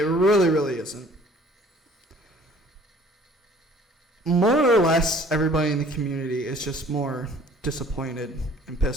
really, really isn't. More or less, everybody in the community is just more disappointed and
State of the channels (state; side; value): normal; both; correlation 0.53